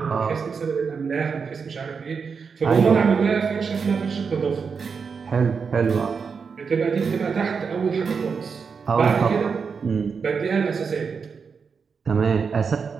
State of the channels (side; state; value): left; quieter; 5.6 dB